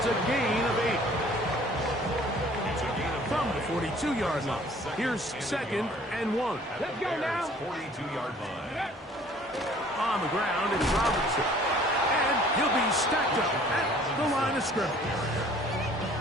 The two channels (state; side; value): normal; both; correlation 0.54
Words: a gain of 8. From the 42-yard line. Here's 2nd and 1. Let's go now. 42-yard line. On the ground, it's Robinson. And he'll be stacked up at the line of scrimmage.